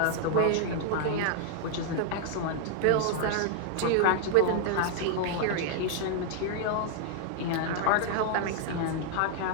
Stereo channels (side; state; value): both; different; correlation 0.00